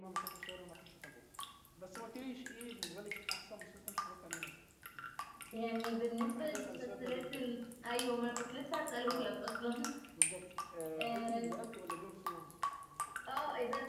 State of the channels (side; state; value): both; identical; correlation 1.00